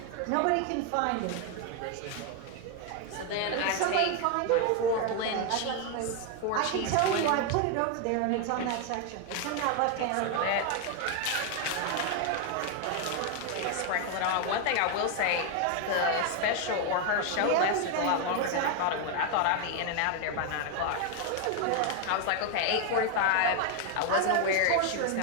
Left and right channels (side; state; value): both; different; correlation 0.01